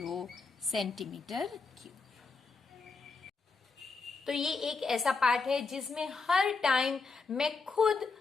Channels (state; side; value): quieter; right; 4.4 dB